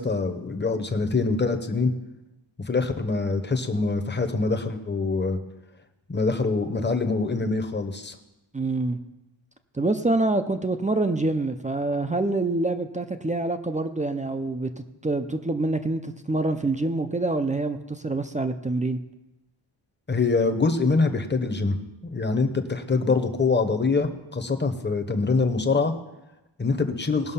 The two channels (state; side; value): normal; both; correlation 0.56